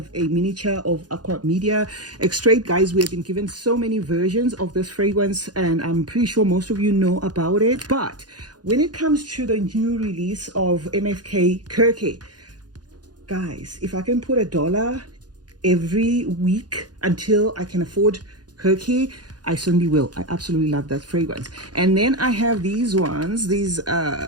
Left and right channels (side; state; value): left; late; 0.69 ms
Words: a miniature of Aqua Media. Extrait, guys, we have been given so many versions of this fragrance, and I'm pretty sure most of you know about it. But when it comes to the new release of MFK Kirke, guys, if I can put $1 every week until I can afford Kirke, I certainly will. I absolutely love that fragrance. And then I have these ones, these